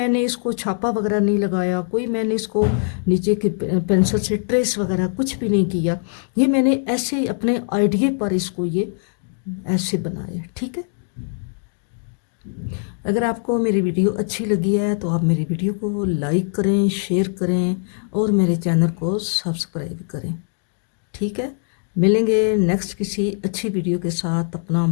इसको छापा वगैरह नहीं लगाया, कोई मैंने इसको नीचे के पेंसिल से ट्रेस वगैरह कुछ भी नहीं किया, ये मैंने ऐसे ही अपने आइडिया पर इसको ये ऐसे बनाया। ठीक है, अगर आपको मेरी वीडियो अच्छी लगी है तो आप मेरी वीडियो को लाइक करें, शेयर करें और मेरे चैनल को सब्सक्राइब करें। ठीक है, मिलेंगे नेक्स्ट किसी अच्छी वीडियो के साथ। अपना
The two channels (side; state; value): right; silent; digital silence